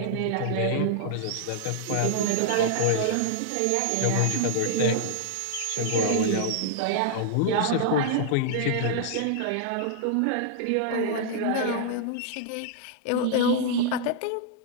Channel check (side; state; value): both; different; correlation -0.01